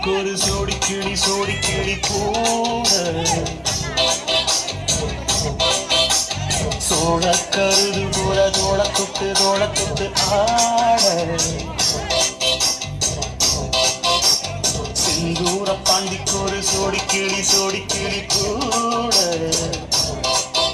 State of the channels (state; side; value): identical; both; correlation 1.00